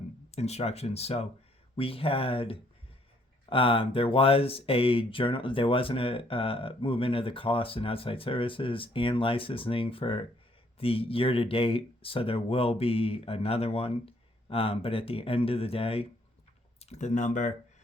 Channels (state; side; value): normal; both; correlation 0.66